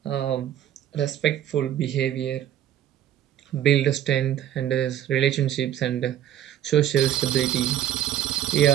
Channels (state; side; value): quieter; left; 11.2 dB